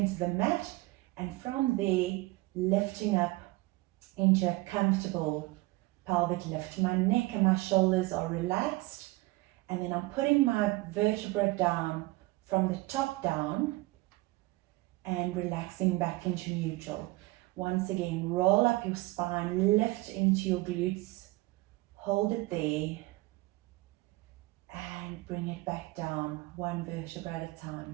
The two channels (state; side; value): quieter; left; 21.1 dB